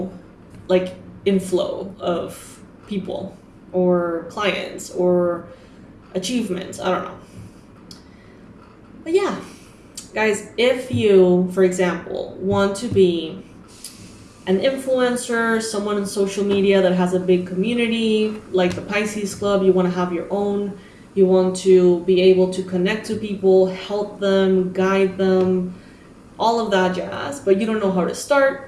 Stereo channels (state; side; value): identical; both; correlation 1.00